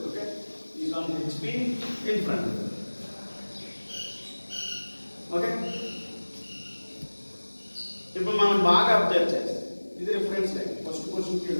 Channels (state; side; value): inverted; both; correlation -1.00